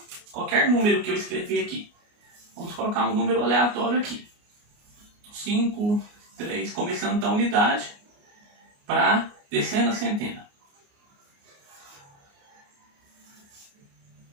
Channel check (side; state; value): left; late; 29 ms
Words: qualquer número que eu escrever aqui, vamos colocar um número aleatório aqui. 5, 3, começando da unidade para decena, centena.